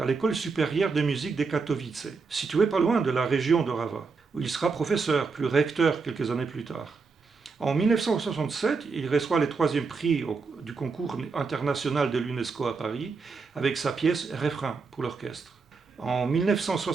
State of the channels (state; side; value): quieter; left; 4.6 dB